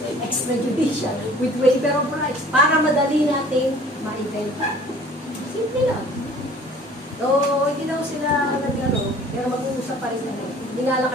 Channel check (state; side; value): normal; both; correlation 0.50